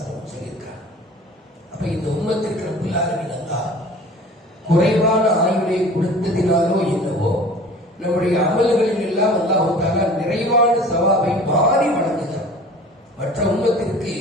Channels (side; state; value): both; normal; correlation 0.44